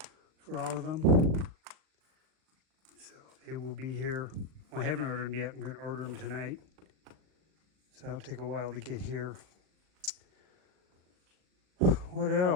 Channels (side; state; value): left; late; 38 ms